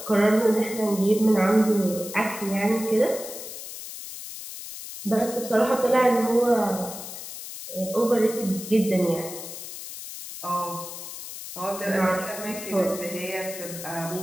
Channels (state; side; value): noise; left; hiss, 10 dB below the sound